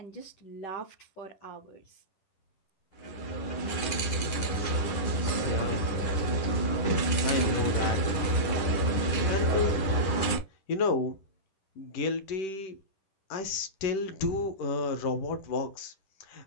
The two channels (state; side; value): late; right; 10 ms